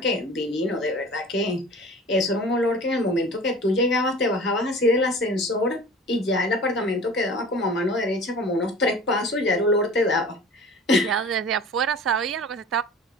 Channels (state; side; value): normal; both; correlation 0.41